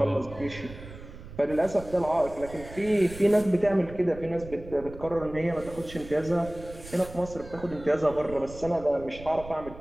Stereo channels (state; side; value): noise; right; rumble, 15 dB below the sound